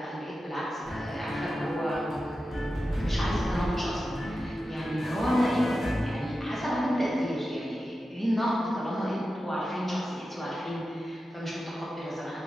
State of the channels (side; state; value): both; normal; correlation 0.92